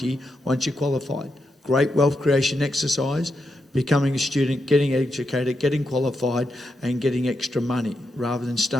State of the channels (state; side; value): normal; both; correlation 0.84